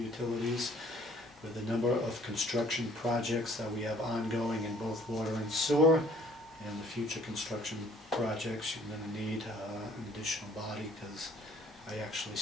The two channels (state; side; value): normal; both; correlation 0.58